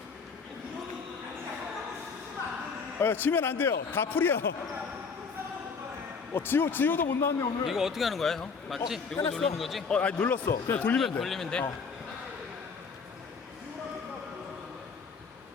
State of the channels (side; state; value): right; quieter; 5.3 dB